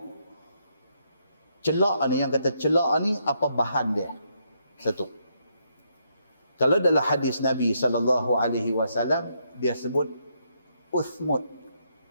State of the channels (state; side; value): inverted; both; correlation -0.76